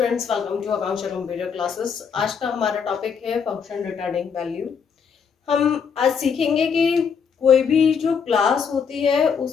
welcome to Akanksha computer classes. आज का हमारा टॉपिक है फंक्शन रिटर्निंग वैल्यू। हम आज सीखेंगे कि कोई भी जो क्लास होती है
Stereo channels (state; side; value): quieter; right; 6.5 dB